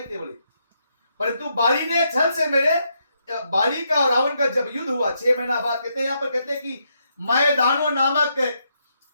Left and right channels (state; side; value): inverted; both; correlation -0.78